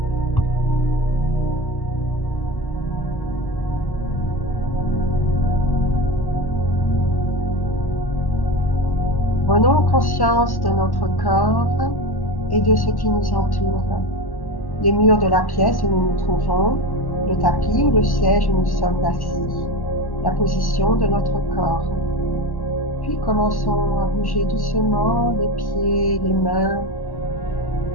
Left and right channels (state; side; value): late; right; 1.1 ms